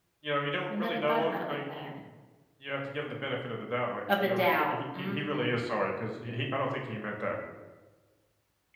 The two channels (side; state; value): both; identical; correlation 1.00